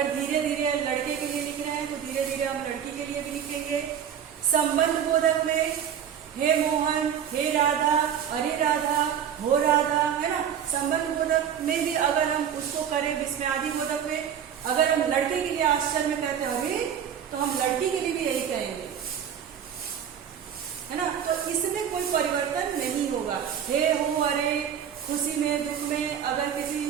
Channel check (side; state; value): left; quieter; 8.7 dB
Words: धीरे धीरे लड़के के लिए लिख रहे हैं तो धीरे धीरे हम लड़की के लिए भी लिखेंगे। संबंध बोधक में हे मोहन, हे राधा, अरे राधा, हो राधा, है ना। संबंध बोधक में भी अगर हम उसको करें विस्मयादि बोधक में, अगर हम लड़के के लिए आश्चर्य में कहते हैं अरे, तो हम लड़की के लिए भी यही कहेंगे, है ना। तो इसमें कोई परिवर्तन नहीं होगा। हे, हो, अरे, खुशी में, दुख में, अगर किसी